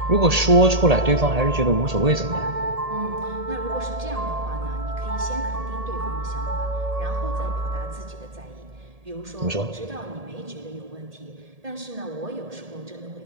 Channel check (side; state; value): left; late; 1.8 ms